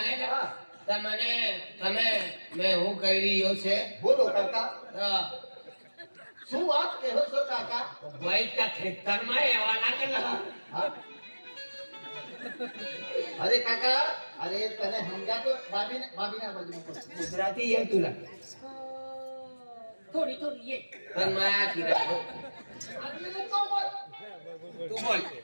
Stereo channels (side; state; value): both; inverted; correlation -1.00